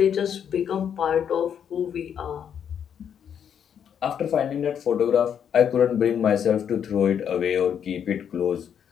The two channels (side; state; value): right; quieter; 8.4 dB